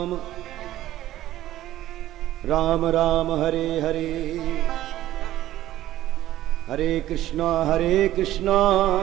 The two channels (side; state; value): left; quieter; 14.1 dB